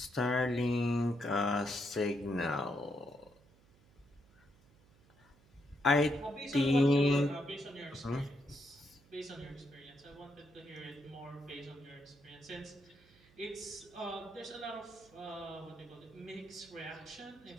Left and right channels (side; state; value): right; noise; hum, 28 dB below the sound